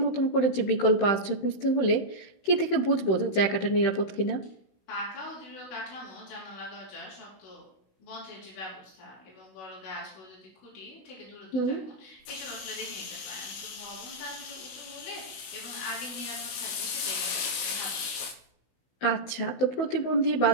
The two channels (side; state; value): right; late; 16 ms